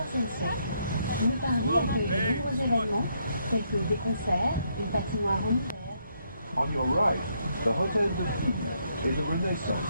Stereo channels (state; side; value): inverted; both; correlation -0.74